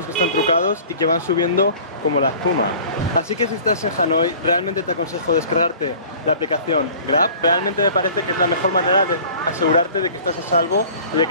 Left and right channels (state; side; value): inverted; both; correlation -0.46